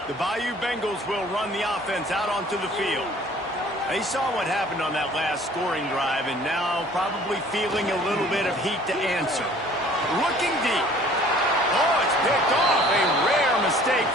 The Bayou Bengals will run the offense out onto the field. They saw what happened on that last scoring drive and now probably feeling a little bit of heat to answer. Looking deep. Oh, it's picked off. A rare mistake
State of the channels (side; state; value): both; normal; correlation 0.52